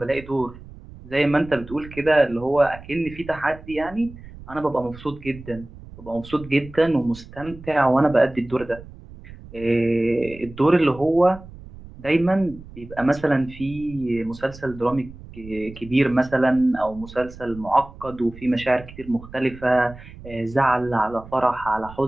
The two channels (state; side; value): noise; right; rumble, 17 dB below the sound